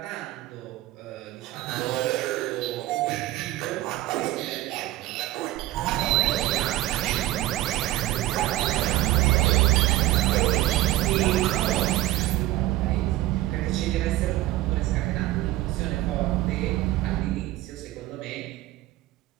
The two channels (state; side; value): quieter; left; 16.2 dB